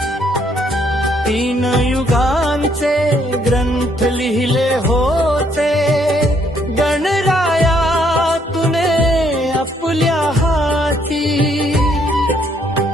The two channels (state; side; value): normal; both; correlation 0.69